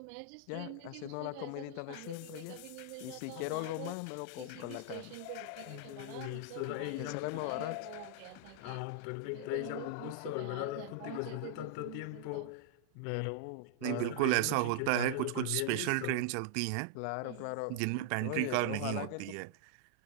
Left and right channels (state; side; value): different; both; correlation -0.01